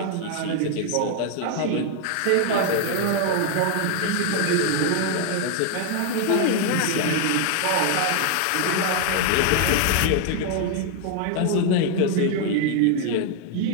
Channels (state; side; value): different; both; correlation 0.00